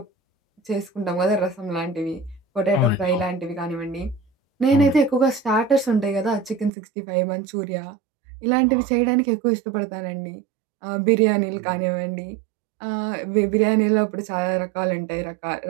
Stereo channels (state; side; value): drops out; left; at 6.7 s